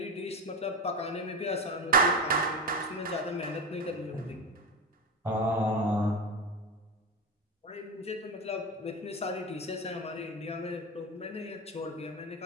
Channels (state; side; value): normal; both; correlation 0.19